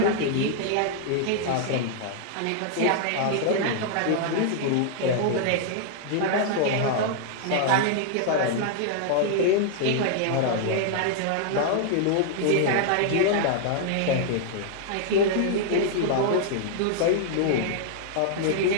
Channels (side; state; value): both; different; correlation -0.01